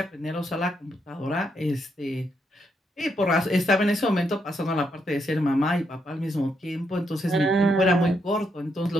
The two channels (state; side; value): normal; both; correlation 0.78